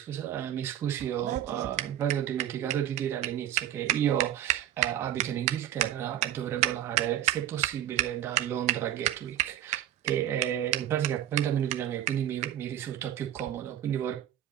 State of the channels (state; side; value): quieter; left; 11.6 dB